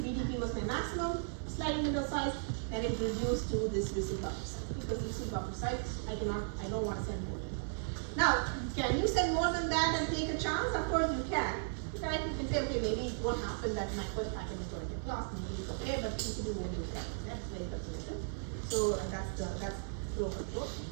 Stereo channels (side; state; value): left; silent; digital silence